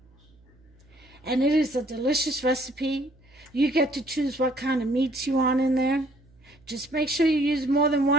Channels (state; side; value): noise; right; hum, 30 dB below the sound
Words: And it is a delicious recipe. You get to choose what kind of meats you want in there. Just make sure you use more than